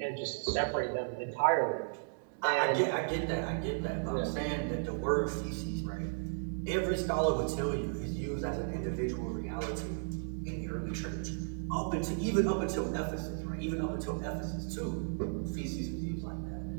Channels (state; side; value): silent; left; 55 dB below the other